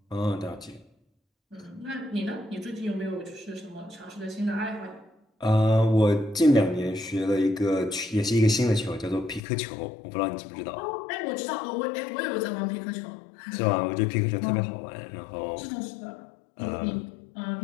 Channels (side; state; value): right; drops out; at 9.4 s